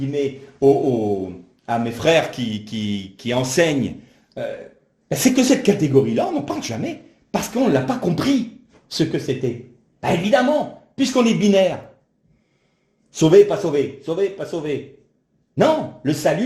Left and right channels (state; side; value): identical; both; correlation 1.00